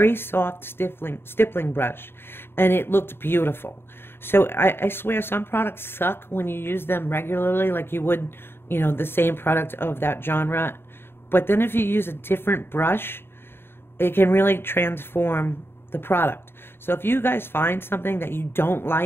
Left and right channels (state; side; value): late; right; 0.11 ms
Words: soft stippling brush. And it looked beautiful. So I swear some products suck when you use them regularly, like you would, you know, the same product of that genre. But then if you use a different brush, it can really transform the product. So if you guys find something that you don't